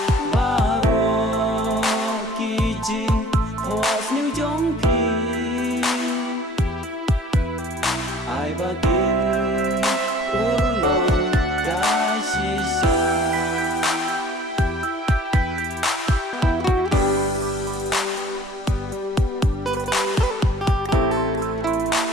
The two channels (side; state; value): both; normal; correlation 0.51